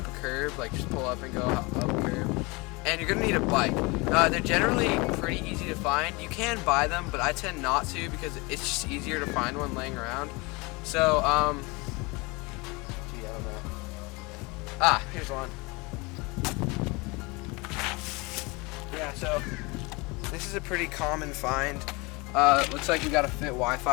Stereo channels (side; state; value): right; quieter; 26.3 dB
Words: a curb, like just pull up and go up a curb. And you're going to need a bike. They're generally pretty easy to find. You can buy them, but I tend not to because it's just easier to find one laying around. So, gee, I don't know. Here's one. Yeah, so this is a pretty common find. Looks like we got a fit